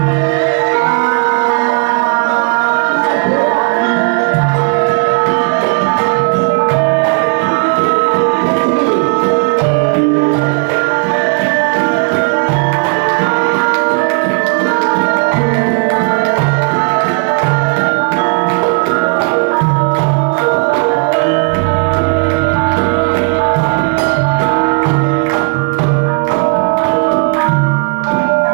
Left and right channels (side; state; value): left; quieter; 38.5 dB